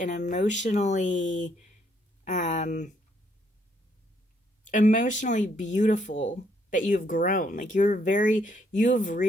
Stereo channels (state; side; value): normal; both; correlation 0.71